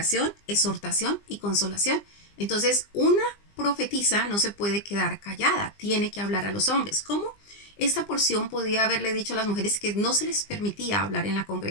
exhortación y consolación. Entonces una profetisa no se puede quedar callada, tiene que hablar a los hombres. ¿Cómo? Esta porción podía haberle dicho a las mujeres que no se les permitía hablar en la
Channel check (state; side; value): late; right; 20 ms